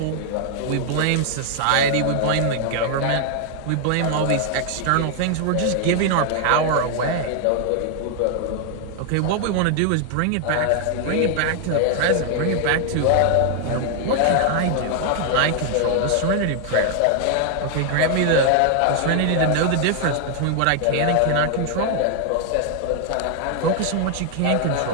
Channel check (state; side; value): different; both; correlation 0.00